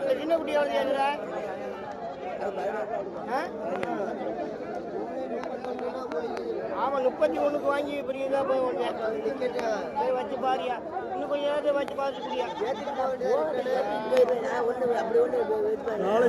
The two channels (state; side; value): identical; both; correlation 1.00